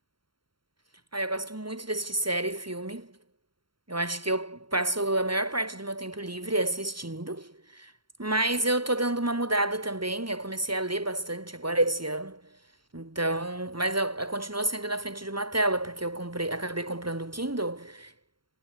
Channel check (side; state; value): left; late; 0.73 ms